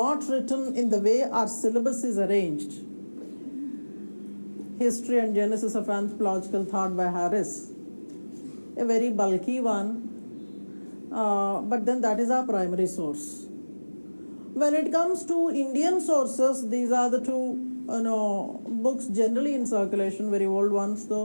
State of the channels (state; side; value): inverted; both; correlation -1.00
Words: written in the way our syllabus is arranged. History and Genesis of Anthropological Thought by Harris, a very bulky one, but then that is our primary source. When it comes to Indian sources, these are the two books generally in circulation, very old ones